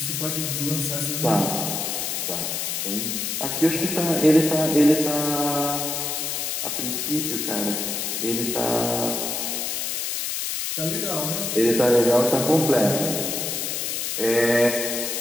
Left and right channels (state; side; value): noise; left; hiss, 2 dB below the sound